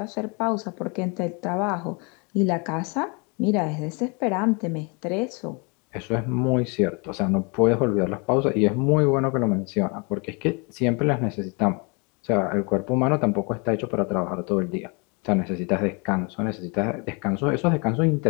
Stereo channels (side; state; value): right; quieter; 32.0 dB